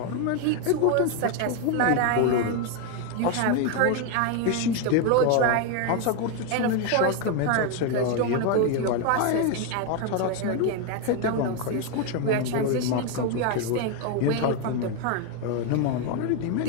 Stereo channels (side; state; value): both; different; correlation 0.01